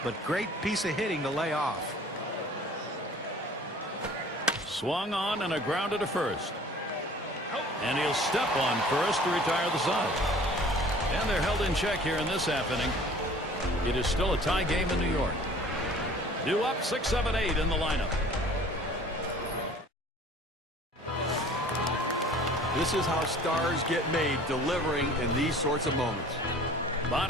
but great piece of hitting to lay off. Swung on and a grounder to first. And he'll step on first to retire the side. And they're held in check here in this half inning. It is still a tie game in New York. Due up 6-7-8 in the lineup. This is how stars get made, delivering in these sorts of moments.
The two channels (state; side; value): normal; both; correlation 0.49